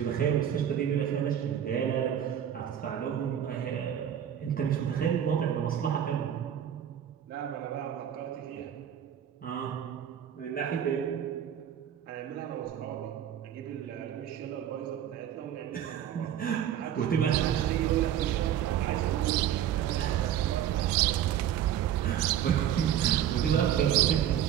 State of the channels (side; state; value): left; quieter; 10.1 dB